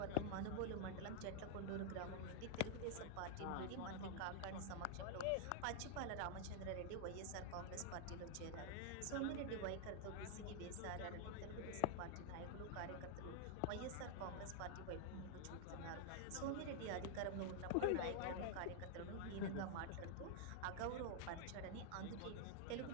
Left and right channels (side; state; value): both; different; correlation 0.00